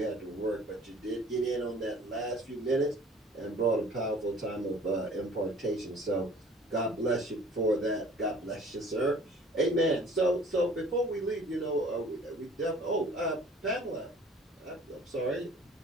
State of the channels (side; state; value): both; normal; correlation 0.50